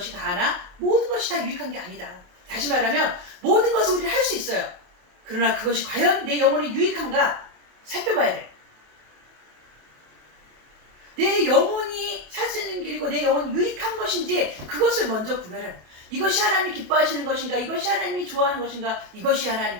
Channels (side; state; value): left; late; 28 ms